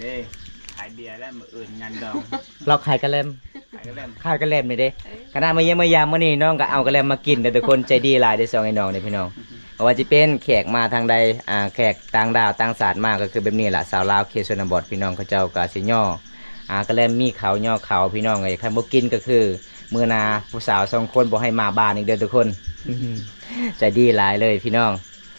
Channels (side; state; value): both; inverted; correlation -1.00